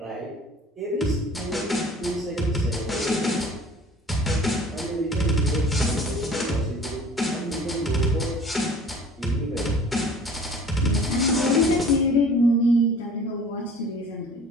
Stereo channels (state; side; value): normal; both; correlation 0.47